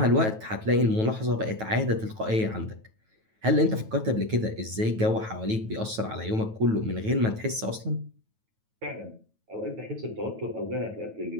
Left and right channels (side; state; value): left; late; 9.2 ms